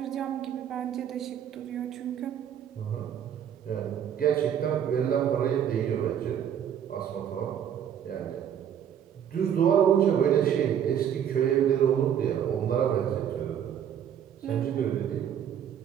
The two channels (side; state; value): left; quieter; 9.2 dB